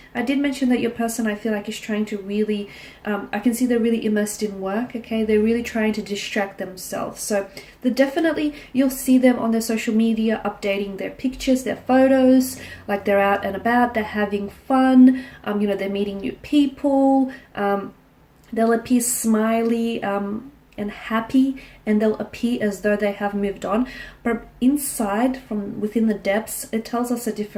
I did mention that your person, I feel like, is trying to really, I can see they're really immersed in work, okay? They're really trying to distract themselves. So definitely, you'll see them on their social media updating their pictures, their photos, like they're out and about, they're having fun, you know, they're meeting new people, they'll appear smiley and happy, and they'll appear as though they have moved on. But inside, from within the depths, it tells us a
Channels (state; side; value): identical; both; correlation 1.00